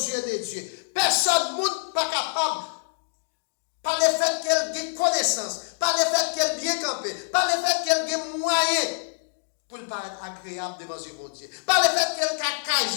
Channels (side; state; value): right; silent; digital silence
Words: de Dieu. Personne n'est pas capable, par le fait qu'elle ait connaissance, par le fait qu'elle bien campé, par le fait qu'elle ait moyen pour le paraître agréable devant mon Dieu, par le fait qu'elle ait